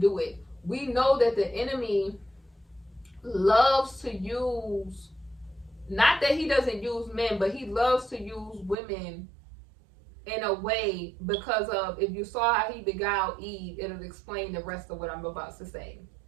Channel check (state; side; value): drops out; left; at 8.8 s